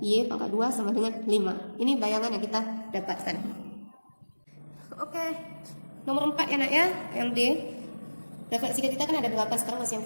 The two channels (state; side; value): inverted; both; correlation -1.00